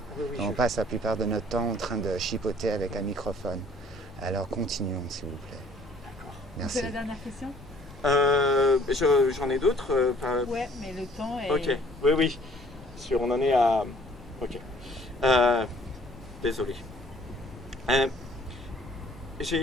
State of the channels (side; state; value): both; normal; correlation 0.57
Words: Oui, oui, On passe la plupart de notre temps en train de chipoter avec un microphone. Alors continuons, s'il vous plaît. D'accord. Merci. C'est la dernière question? J'en ai d'autres. Ouais, mais le temps est... Ok, oui. On en est à... Ok. Désolé.